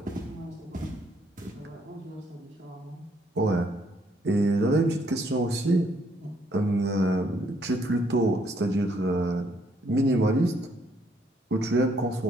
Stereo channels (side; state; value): both; normal; correlation 0.69